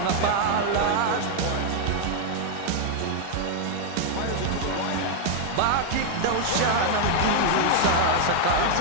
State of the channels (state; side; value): different; both; correlation 0.00